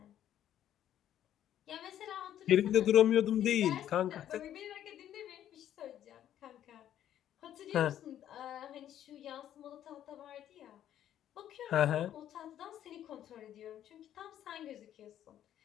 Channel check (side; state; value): right; quieter; 11.1 dB